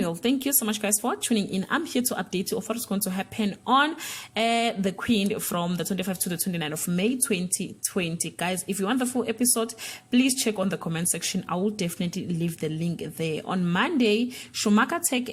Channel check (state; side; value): identical; both; correlation 1.00